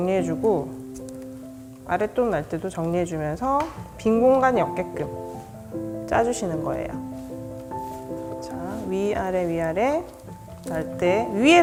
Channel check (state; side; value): identical; both; correlation 1.00